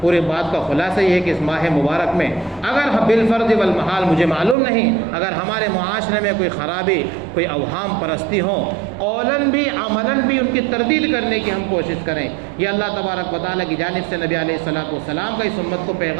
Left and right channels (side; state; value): left; drops out; at 4.5 s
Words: بات کا خلاصہ یہ ہے کہ اس ماہ مبارک میں اگر بالفرض والمحال مجھے معلوم نہیں، اگر ہمارے معاشرے میں کوئی خرابی، کوئی اوہام پرستی ہوں، قولاً بھی عملاً بھی ان کی تردید کرنے کی ہم کوشش کریں، یہ اللہ تبارک و تعالیٰ کی جانب سے نبی علیہ السلام کا اس امت کو